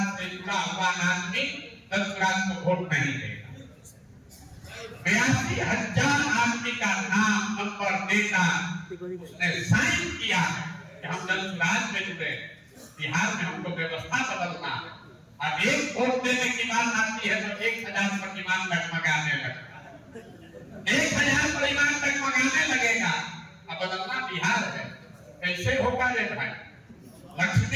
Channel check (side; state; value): both; identical; correlation 1.00